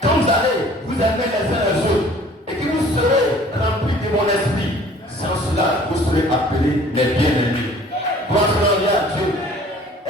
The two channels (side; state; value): both; normal; correlation 0.51